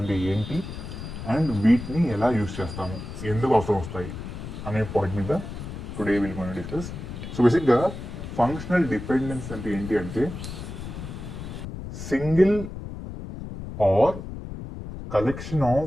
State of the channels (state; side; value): noise; left; rumble, 9 dB below the sound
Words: ఏంటి అండ్ వీటిని ఎలా యూజ్ చేస్తాము, ఎందుకు అవసరం వస్తాయి అనే పాయింట్ మీద టుడే విల్ మనం డిస్కస్. సో బేసిక్గా ఫంక్షనల్ డిపెండెన్సీ అంటే ఏంటి అంటే single or collection